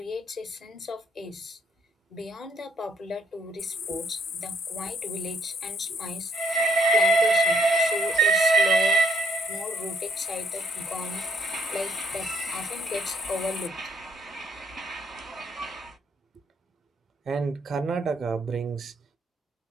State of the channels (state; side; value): normal; both; correlation 0.67